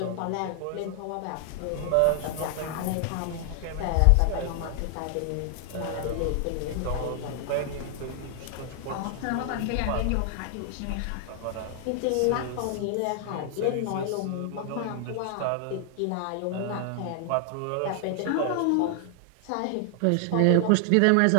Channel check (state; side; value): different; both; correlation 0.00